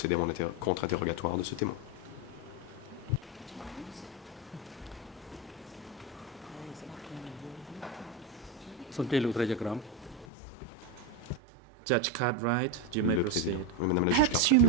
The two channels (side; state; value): both; normal; correlation 0.12